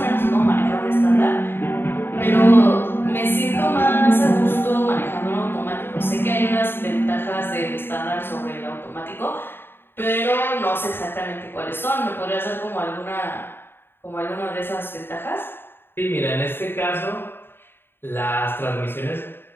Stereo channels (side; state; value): right; late; 0.10 ms